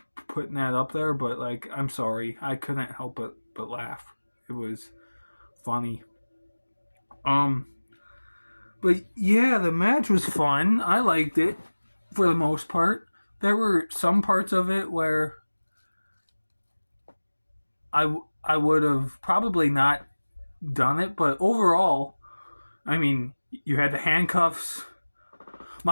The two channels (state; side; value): inverted; both; correlation -1.00